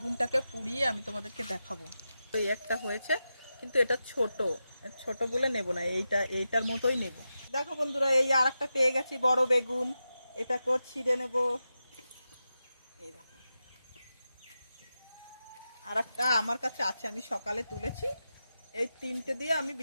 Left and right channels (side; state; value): both; inverted; correlation -0.91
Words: পুড়িয়ে আমি তোমাদেরকে দেখাবো। এই একটা হয়েছে, কিন্তু এটা ছোট ছোট বলে নেব না, এইটার মতোই নেব। দেখো বন্ধুরা, এই আর একটা পেয়ে গেছি বড় বেগুন। এটাকেও ছিঁড়ে নেব। এই দেখো, আর একটা আমার কাছে আছে, আমি সকালে তুলেছি। এই তিনটে দিয়ে আমি